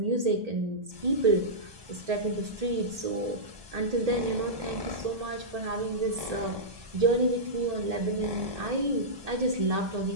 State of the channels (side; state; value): left; late; 1.8 ms